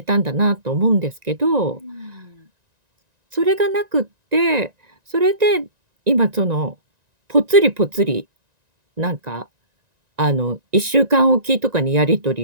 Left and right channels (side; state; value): left; late; 1.9 ms